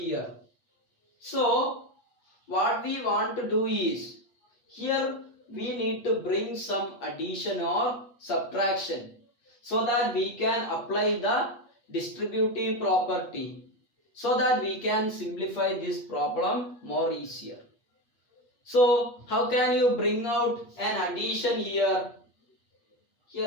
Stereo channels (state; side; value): late; right; 8.5 ms